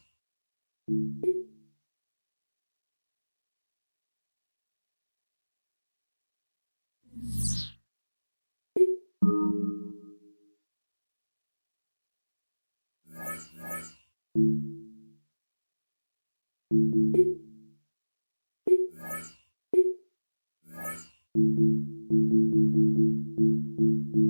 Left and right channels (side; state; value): both; inverted; correlation -1.00